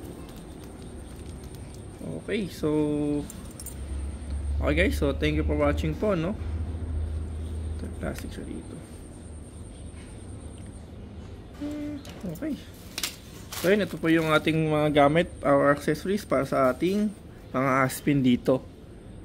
Okay, so okay guys, so thank you for watching po, no? Ito, plastic siya dito. Okay, so yun, ito po yung ating mga gamit, our accessories para sa ating mga aspin dito.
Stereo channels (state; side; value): identical; both; correlation 1.00